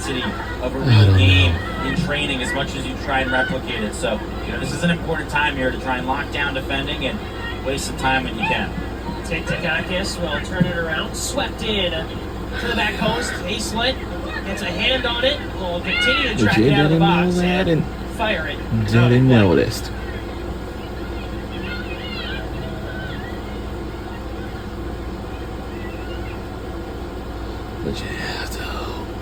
of a real game in training as much as you try and replicate it. So, this is an important time here to try and lock down defending and waste some time when you can. Takakis will turn it around, swept in to the back post. Hayslett gets a hand on it, will continue to track it out of the box and fire it. Didn't notice. But yeah,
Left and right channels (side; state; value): both; identical; correlation 1.00